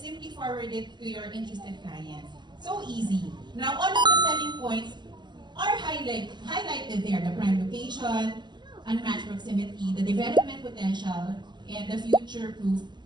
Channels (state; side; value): late; left; 0.21 ms